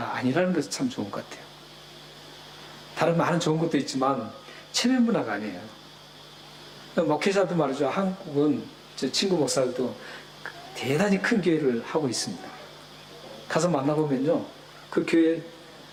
아니라는 것이 참 좋은 것 같아요. 다른 많은 좋은 것도 있지만 체면 문화가 아니에요. 목회자도 말이죠. 한국은 제 친구 목사들도 대단히 큰 교회를 하고 있습니다. 가서 만나보면요. 그 교회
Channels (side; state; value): both; identical; correlation 1.00